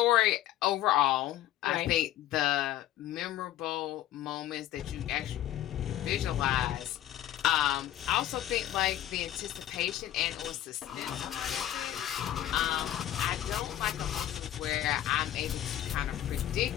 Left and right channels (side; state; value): right; quieter; 12.7 dB